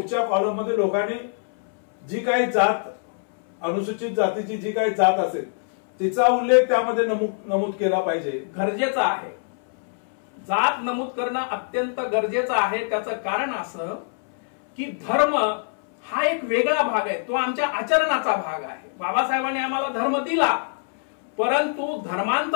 कॉलम मध्ये लोकांनी जी काही जात, अनुसूचित जातीची जी काही जात असेल तिचा उल्लेख त्यामध्ये नमूद केला पाहिजे, गरजेचं आहे. जात नमूद करणं अत्यंत गरजेचं आहे. त्याचं कारण असं की धर्म हा एक वेगळा भाग आहे, तो आमच्या आचरणाचा भाग आहे. बाबासाहेबांनी आम्हाला धर्म दिला, परंतु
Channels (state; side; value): silent; right; 63 dB below the other